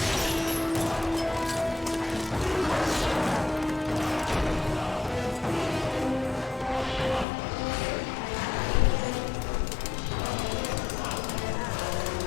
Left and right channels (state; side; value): drops out; right; at 7.2 s